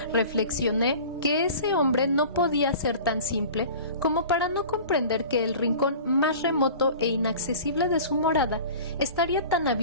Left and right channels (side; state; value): both; inverted; correlation -0.41